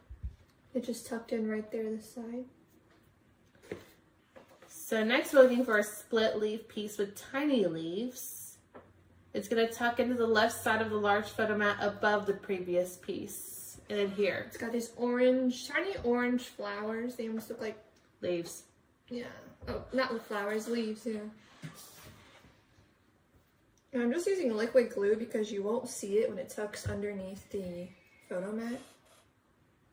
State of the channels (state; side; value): identical; both; correlation 1.00